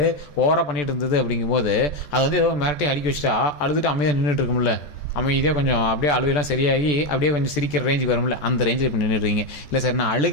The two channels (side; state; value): right; late; 14 ms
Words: ஓவராக பண்ணிகிட்டு இருந்தது அப்படிங்கும்போது அது வந்து ஏதோ மிரட்டி அடிக்க வச்சுட்டா அழுதுட்டு அமைதியாக நின்றுட்டு இருக்கும்ல, அமைதியாக கொஞ்சம் அப்படியே அழுகையெல்லாம் சரியாகி அப்படியே கொஞ்சம் சிரிக்கிற ரேஞ்சுக்கு வரும்ல, அந்த ரேஞ்சில் இப்போ நின்றுடுறீங்க. இல்லை சார் நான்